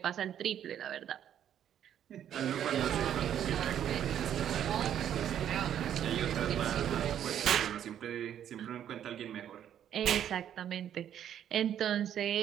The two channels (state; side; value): quieter; left; 10.1 dB